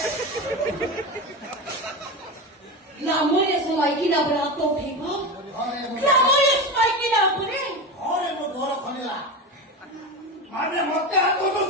लामोरे समय की ना बना तो ठीको लामोरे समय की ना पुरे अरे मो घर खनिला माने मते हाथ तो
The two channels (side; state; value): both; normal; correlation 0.22